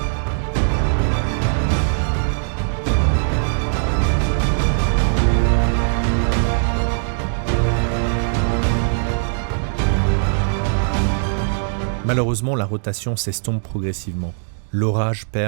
Malheureusement, la rotation s'estompe progressivement. L'orage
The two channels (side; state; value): left; silent; digital silence